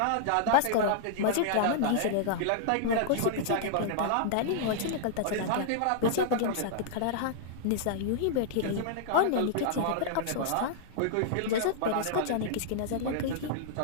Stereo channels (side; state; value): both; different; correlation -0.01